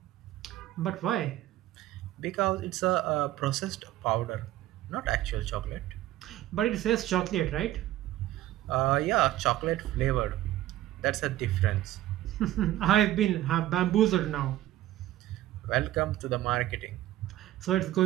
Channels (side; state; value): left; quieter; 14.5 dB